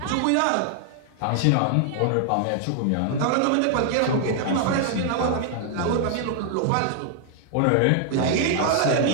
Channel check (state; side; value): different; both; correlation 0.00